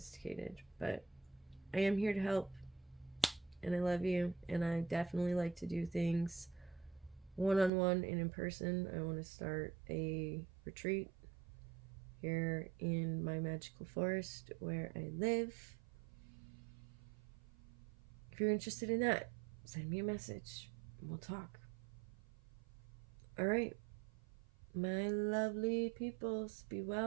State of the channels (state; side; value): drops out; left; at 7.7 s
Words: but I am here to help, and I love you, and I definitely like to do things one-on-one and in person. I want to start a retreat here in my magical forest where I live. If you're interested in that, send me a message. We'll talk. All right. My lovely peoples, be